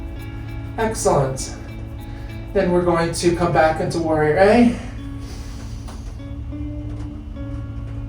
Excellent. Then we're going to come back into warrior A.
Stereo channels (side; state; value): both; identical; correlation 1.00